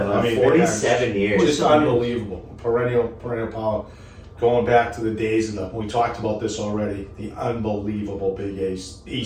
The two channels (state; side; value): identical; both; correlation 1.00